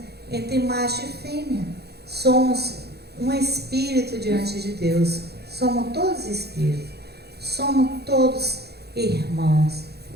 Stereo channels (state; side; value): late; left; 0.47 ms